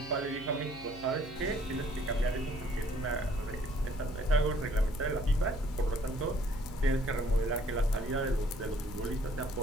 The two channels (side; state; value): right; noise; hum, 18 dB below the sound